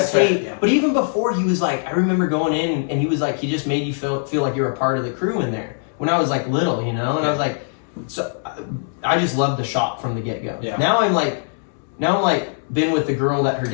Skate, right, yeah. but even before he was like, I remember going in and he was like, he just made you feel like you were a part of the crew in there. When I was like little, you know, and I was like, so I just loved the shop from the get go. Yeah. Now I'm like been with the girl that her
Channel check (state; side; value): silent; right; digital silence